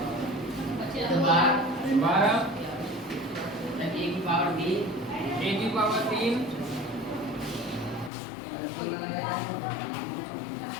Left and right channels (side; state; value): right; drops out; at 8.1 s